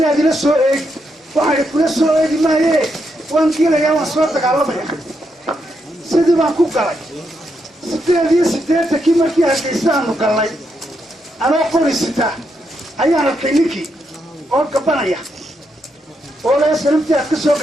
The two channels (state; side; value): normal; both; correlation 0.81